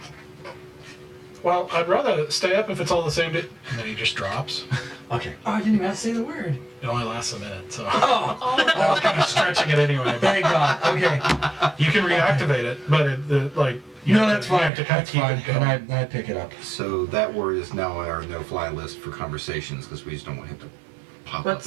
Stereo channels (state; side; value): drops out; left; at 14.7 s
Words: Well, I'd rather stay up if it's all the same. And then he just drops. Okay. Oh, I didn't even have to say the word. It only lasts a minute, so Oh, I was kind of stretching it anyway. thank God. Okay. You can reactivate it, but you No, have that's to, you fine. have to kind of That's keep fine. it going. And I pick it up. So that word is now on our no-fly list for conversations because we just don't want him to pop up. What's